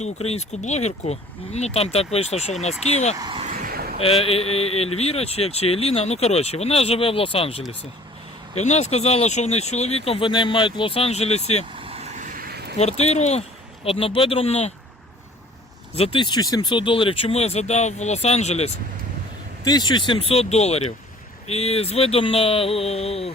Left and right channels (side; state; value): both; normal; correlation 0.51